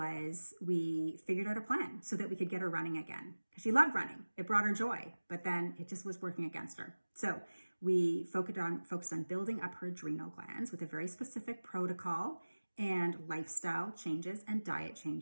we figured out a plan so that we could get her running again. She loved running. It brought her joy, but then it just was working against her. So we focused on building up her adrenal glands with a very specific protocol and lifestyle changes and diet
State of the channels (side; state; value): both; inverted; correlation -1.00